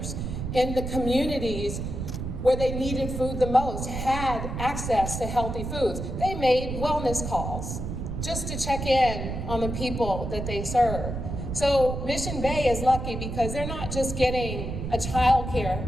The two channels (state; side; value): noise; right; rumble, 5 dB below the sound